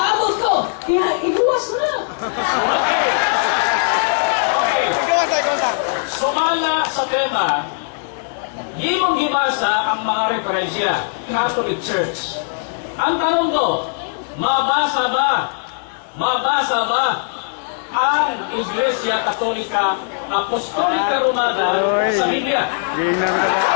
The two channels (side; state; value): right; silent; 66 dB below the other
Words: ko. Kaya iguwas na. Sumala sa tema, imong gibasa ang mga referensya, Catholic Church. Ang tanong ko, mabasa ba ang Iglesia Katolika Apostolika Romana sa Biblia?